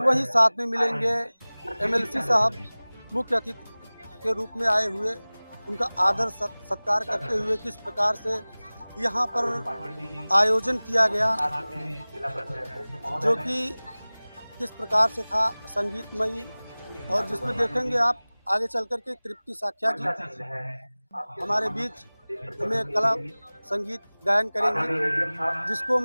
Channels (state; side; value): inverted; both; correlation -1.00